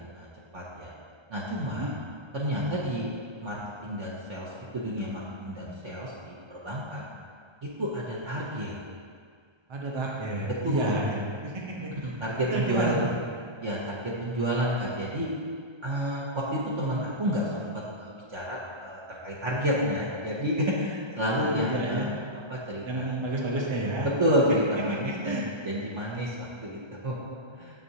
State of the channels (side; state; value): left; late; 1.3 ms